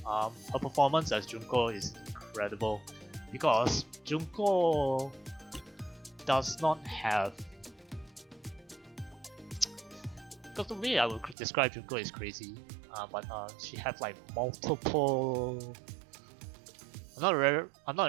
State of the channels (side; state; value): left; drops out; at 11.4 s